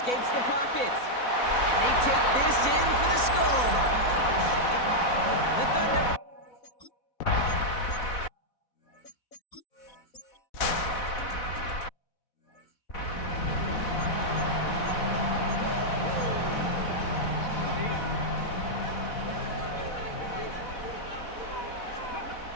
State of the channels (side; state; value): right; late; 4.1 ms